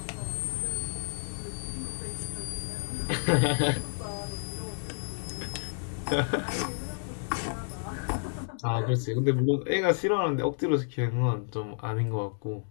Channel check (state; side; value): silent; right; digital silence